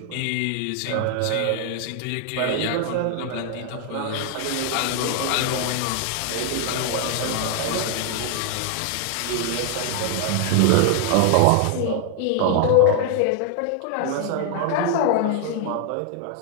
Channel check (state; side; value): different; both; correlation 0.00